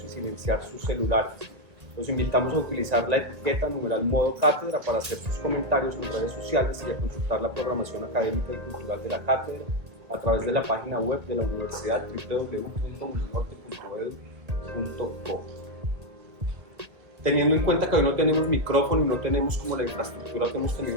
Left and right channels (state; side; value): late; left; 1.6 ms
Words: y silenciar sus celulares. Los invitamos a utilizar la etiqueta #modo cátedra para hacer sus comentarios en redes sociales y a consultar la programación académica y cultural de la cátedra a través de la página web de la universidad www.uninorte.edu.co. Teniendo en cuenta que hoy no tenemos micrófono y no tenemos como la infraestructura que hemos tenido